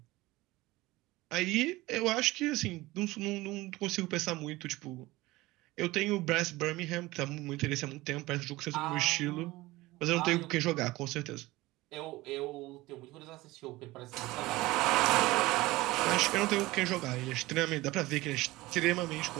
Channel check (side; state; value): left; quieter; 19.6 dB